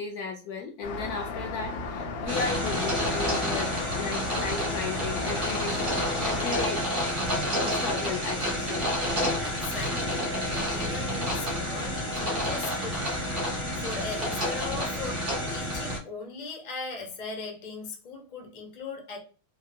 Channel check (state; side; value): normal; both; correlation 0.12